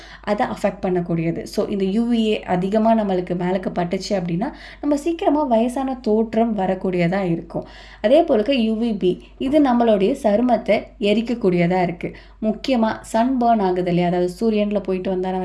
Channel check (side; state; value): both; identical; correlation 1.00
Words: அதை அஃபெக்ட் பண்ணக்கூடியது. ஸோ இந்த யூவிஏ அதிகமாக நம்மளுக்கு மேலுக்கு பட்டுச்சு அப்படின்னா நம்ம சீக்கிரமாக வயசான தோற்றம் வரக்கூடியதாக இருக்கும். அதே போலுக்கு யூவிபி, இது நம்மளுடைய சருமத்தை எரிக்கக்கூடியதாக இருக்குது. முக்கியமாக சன் பர்ன் ஆகுது இல்லையா, அதாவது சூரியனில் போயிட்டு வந்தால்